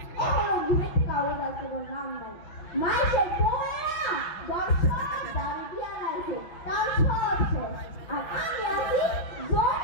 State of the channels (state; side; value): late; right; 6.0 ms